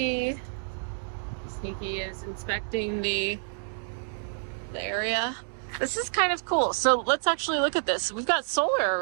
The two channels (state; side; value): silent; left; digital silence